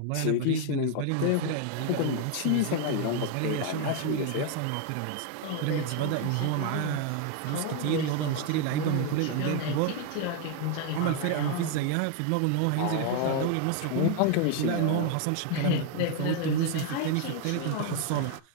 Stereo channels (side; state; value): both; different; correlation 0.01